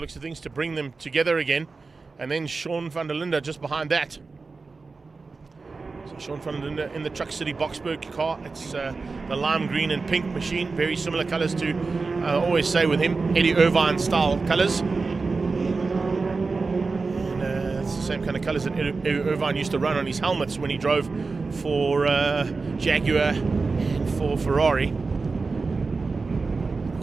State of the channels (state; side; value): quieter; left; 4.1 dB